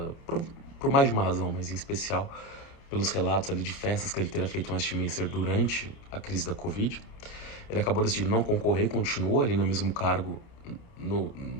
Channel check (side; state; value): right; late; 29 ms